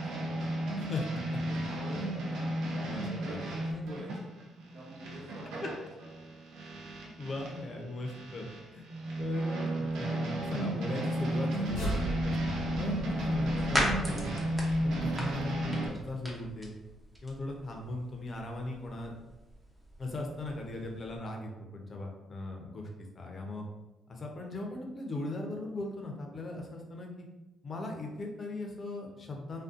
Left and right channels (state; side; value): normal; both; correlation 0.78